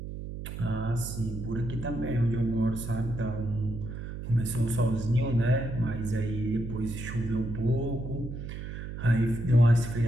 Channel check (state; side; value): noise; right; hum, 8 dB below the sound